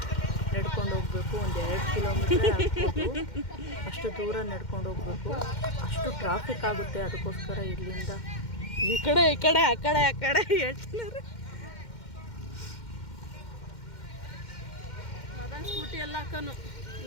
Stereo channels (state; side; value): late; right; 2.1 ms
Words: ನಡ್ಕೊಂಡು ಹೋಗ್ಬೇಕು. 1-2 ಕಿಲೋಮೀಟ್ರ್ ಆಗ್ಬೋದು, ಅಷ್ಟು ದೂರ ನಡ್ಕೊಂಡು ಹೋಗ್ಬೇಕು. ಅಷ್ಟು ಟ್ರಾಫಿಕ್ ಆಗುತ್ತೆ. ಅದಕ್ಕೋಸ್ಕರ ಇಲ್ಲಿಂದ ಈ ಕಡೆ ಆ ಕಡೆ ಹೇಳ್ತಿದ್ದಾರೆ. ಅದನ್ನು ಸ್ಕೂಟಿ ಎಲ್ಲ ಹಾಕೋನು